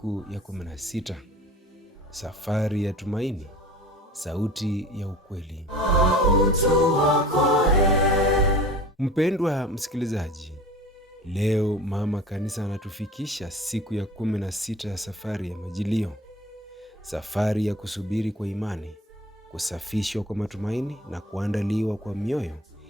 ya 16. Safari ya tumaini, sauti ya ukweli. Mpendwa msikilizaji, leo mama kanisa anatufikisha siku ya 16 ya safari ya Majilio. Safari ya kusubiri kwa imani, kusafishwa kwa matumaini na kuandaliwa kwa mioyo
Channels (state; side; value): normal; both; correlation 0.41